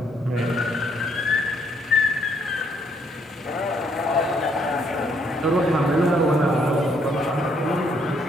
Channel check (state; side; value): normal; both; correlation 0.70